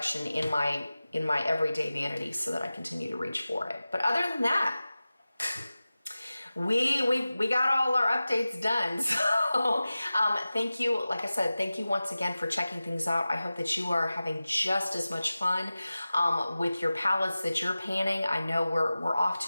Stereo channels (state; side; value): inverted; both; correlation -0.96